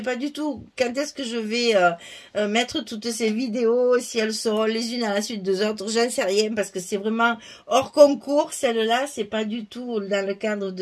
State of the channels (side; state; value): both; identical; correlation 1.00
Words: pas du tout quand est-ce que je vais mettre toutes ces vidéos, si elles seront les unes à la suite des autres, j'en sais rien parce que c'est vraiment hors concours. Celle-là, c'est pas du tout dans le cadre